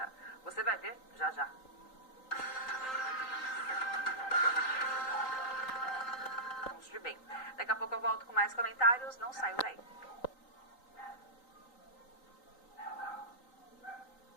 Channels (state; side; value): late; right; 3.9 ms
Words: Você vai ver já já. De bem. Daqui a pouco eu volto com mais comentários, não saiam daí.